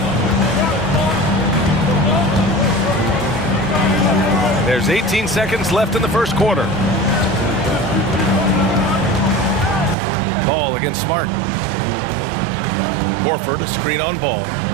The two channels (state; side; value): drops out; left; at 10.0 s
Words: There's 18 seconds left in the first quarter. Ball against Smart. Horford, a screen on Ball.